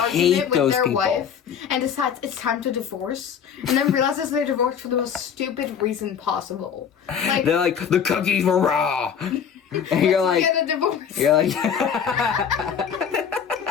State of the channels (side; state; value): right; quieter; 7.7 dB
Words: with their wife and decides it's time to divorce and then realizes they're divorced for the most stupid reason possible. They're like, the cookies were raw. And you're like, get a divorce. You're like,